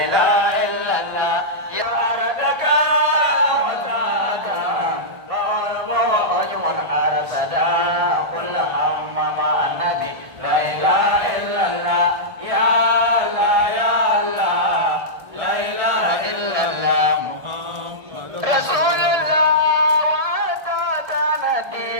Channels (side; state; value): left; late; 1.7 ms